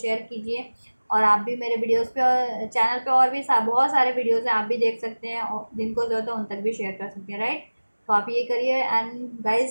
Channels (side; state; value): both; inverted; correlation -1.00